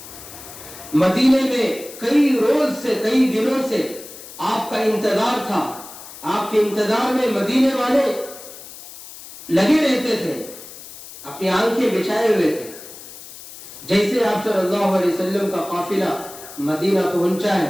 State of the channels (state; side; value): noise; left; hiss, 15 dB below the sound